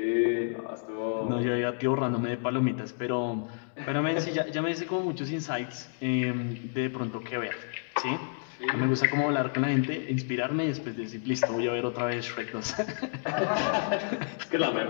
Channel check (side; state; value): right; silent; digital silence